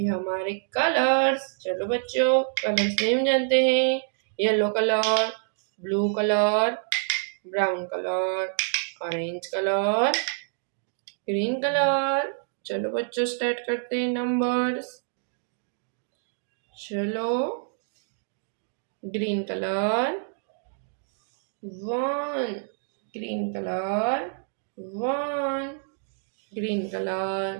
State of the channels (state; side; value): silent; left; digital silence